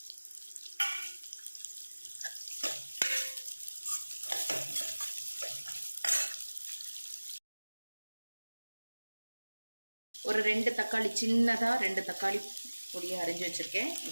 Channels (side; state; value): both; inverted; correlation -1.00